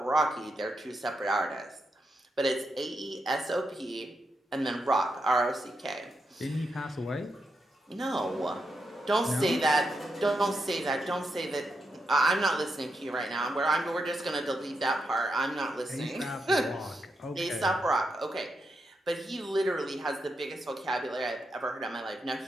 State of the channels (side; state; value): both; normal; correlation 0.84